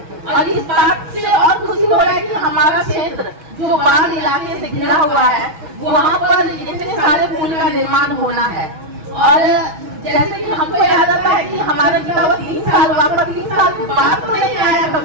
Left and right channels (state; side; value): late; left; 6.1 ms